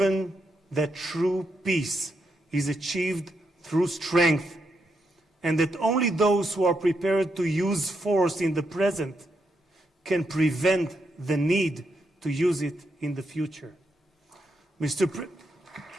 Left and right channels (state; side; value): normal; both; correlation 0.81